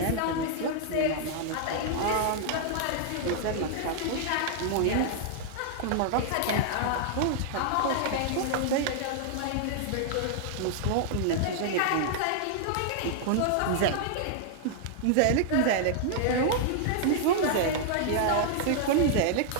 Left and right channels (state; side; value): different; both; correlation -0.01